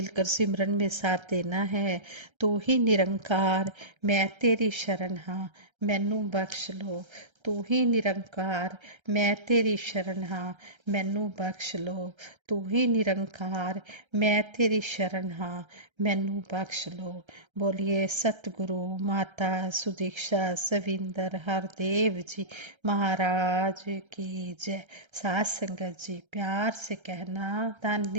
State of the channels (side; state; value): left; late; 1.3 ms